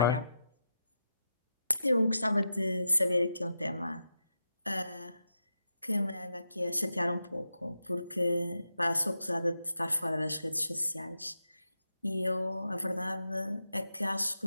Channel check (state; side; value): inverted; both; correlation -0.86